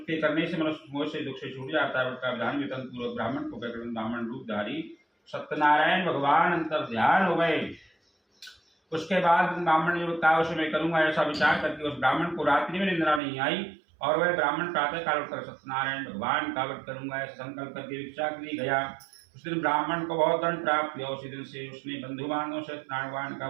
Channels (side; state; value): left; drops out; at 13.2 s